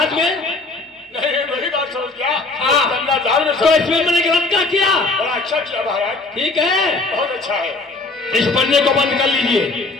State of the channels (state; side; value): quieter; right; 3.4 dB